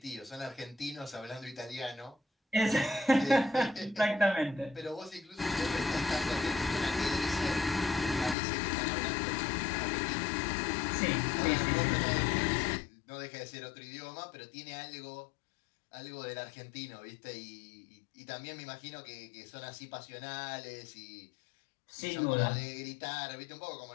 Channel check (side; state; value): right; drops out; at 8.3 s